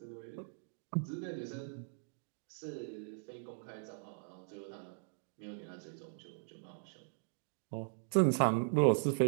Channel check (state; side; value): silent; left; digital silence